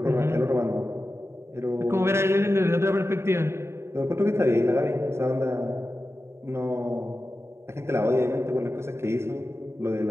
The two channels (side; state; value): left; late; 0.13 ms